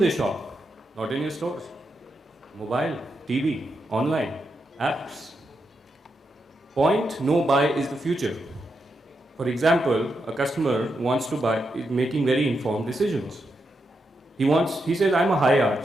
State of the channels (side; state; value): both; normal; correlation 0.84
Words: shop? Not in your stores. Mobile, TV, online, apps. Point, no buy is the future. For example, a customer wants to buy, is making very informed decisions. He says, I'm a high arch